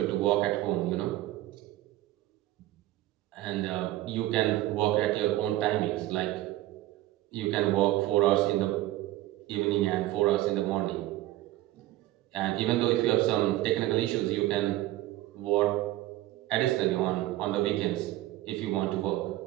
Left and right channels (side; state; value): left; quieter; 16.0 dB